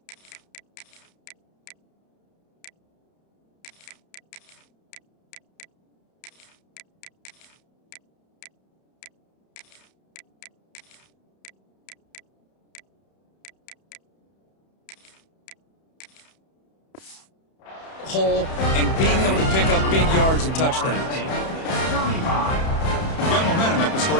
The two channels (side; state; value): right; late; 31 ms